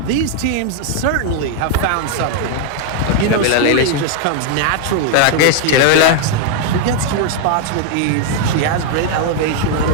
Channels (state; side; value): different; both; correlation 0.00